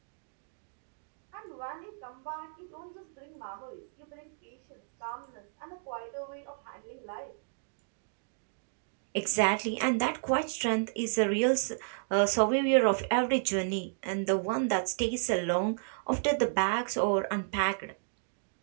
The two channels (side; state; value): left; silent; digital silence